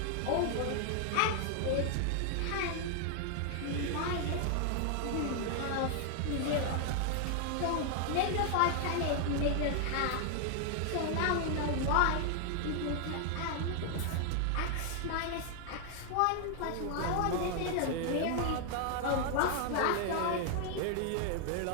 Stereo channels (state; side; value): different; both; correlation 0.00